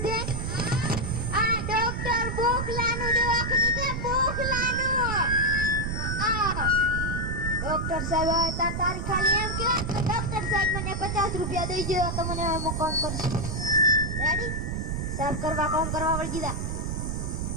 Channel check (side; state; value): right; noise; rumble, 2 dB below the sound